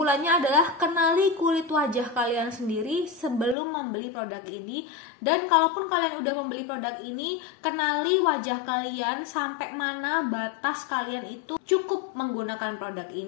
adalah kenali kulit wajah kalian sendiri sebelum membeli produk ini. Dan kalaupun kalian udah membeli produk ini, kenali wajah kalian sampai mana batas kalian itu cukup menggunakan produk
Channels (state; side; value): drops out; right; at 3.6 s